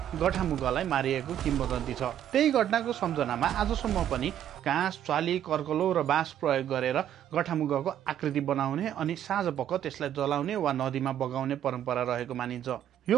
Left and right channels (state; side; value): quieter; left; 10.7 dB